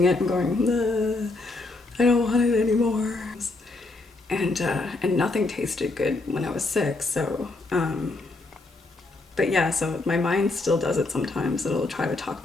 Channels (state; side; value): quieter; right; 3.3 dB